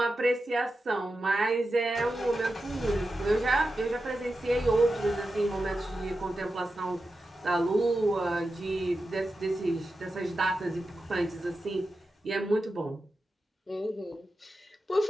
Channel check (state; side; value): normal; both; correlation 0.91